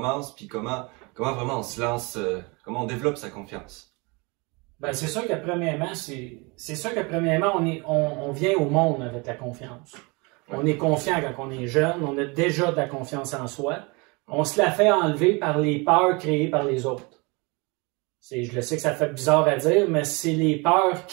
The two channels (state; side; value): quieter; left; 28.1 dB